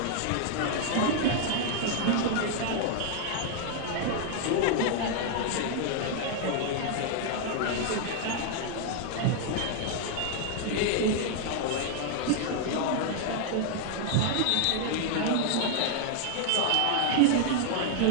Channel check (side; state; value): both; different; correlation 0.00